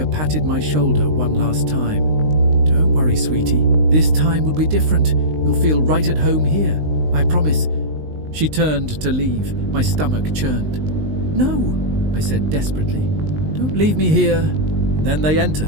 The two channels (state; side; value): late; left; 19 ms